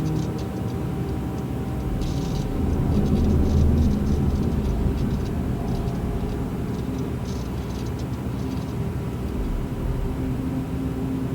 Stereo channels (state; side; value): identical; both; correlation 1.00